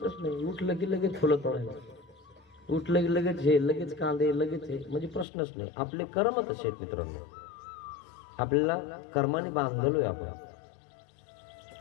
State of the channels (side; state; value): right; drops out; at 5.2 s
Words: नाही. उठलं की लगेच फुलं तोडायला, उठलं की लगेच हे, लगेच कांदे, लगेच हे, म्हणजे प्रश्नच नाही. आपले कर्म तसे आहेत मित्रांनो. आपल्याला कर्माने बांधलोय आपण.